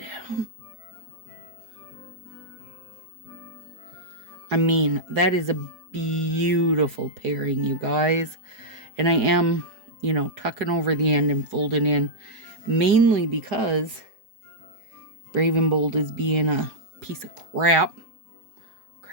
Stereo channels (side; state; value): left; late; 4.8 ms